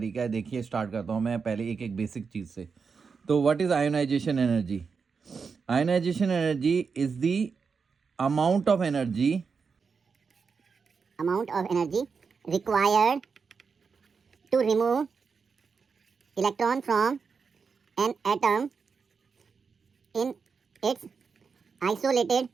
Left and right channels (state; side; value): quieter; left; 5.4 dB